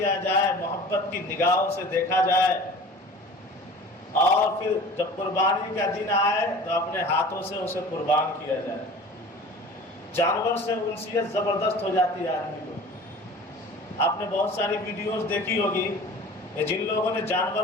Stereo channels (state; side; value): normal; both; correlation 0.42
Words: جائے، محبت کی نگاہوں سے دیکھا جائے، اور پھر جب قربانی کا دن آئے تو اپنے ہاتھوں سے اسے قربان کیا جائے. جانور سے انسیت زبردست ہو جاتی ہے آدمی کو. آپ نے بہت ساری ویڈیوز دیکھی ہوگی کہ جن لوگوں نے